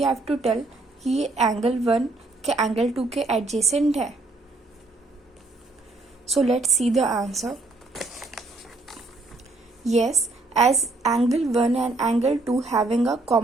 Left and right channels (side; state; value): left; quieter; 3.1 dB